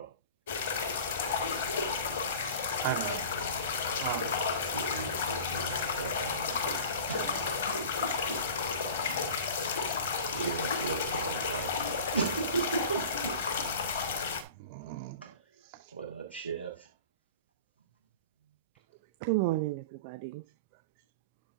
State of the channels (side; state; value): both; inverted; correlation -0.38